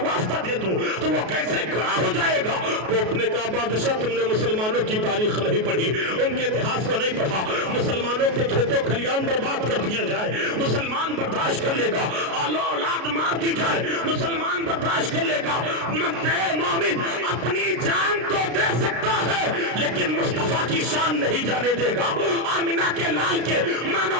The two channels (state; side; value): late; left; 33 ms